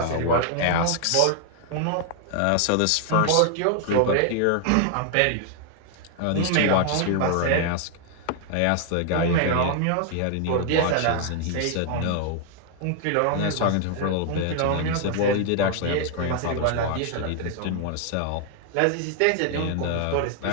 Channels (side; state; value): both; different; correlation 0.00